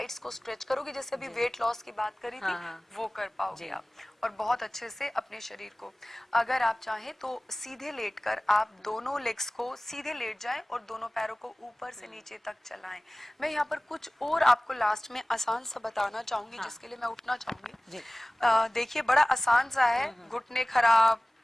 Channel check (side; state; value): both; normal; correlation 0.98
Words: को स्ट्रेच करोगे, जैसे अभी वेट लॉस की बात करी थी, वो कर पाओगे आप, और बहुत अच्छे से अपने शरीर को। अगर आप चाहें तो सीधे लेटकर आप दोनों लेग्स को सीधे लेट जाएं और दोनों पैरों को ऊपर से नीचे तक चलाएं। मैं यहाँ पर कुछ और आपको लास्ट में आसान सा बताना चाहूंगी, जिसके लिए मैं उठना चाहूंगी। देखिए, बड़ा आसान सा है, घुटने खराब